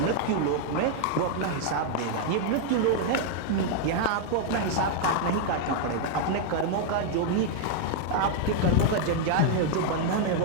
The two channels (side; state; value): both; different; correlation 0.00